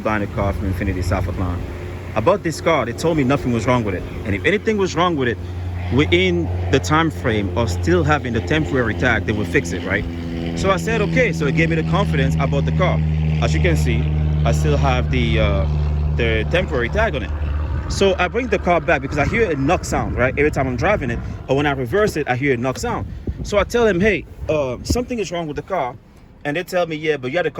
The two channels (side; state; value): both; identical; correlation 1.00